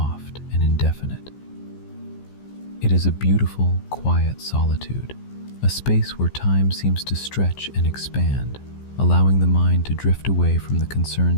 and indefinite. It is a beautiful, quiet solitude, a space where time seems to stretch and expand, allowing the mind to drift away from the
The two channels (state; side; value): late; right; 15 ms